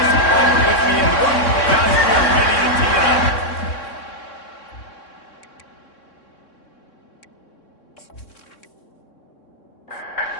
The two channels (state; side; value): late; right; 3.6 ms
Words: Palmer with me in the room. Guys, we are ready to tee it up.